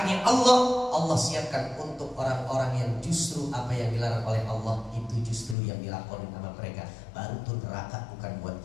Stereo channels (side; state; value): right; drops out; at 5.6 s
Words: Allah siapkan untuk orang-orang yang justru apa yang dilarang oleh Allah itu justru yang dilakukan sama mereka. Baru tuh neraka bukan buat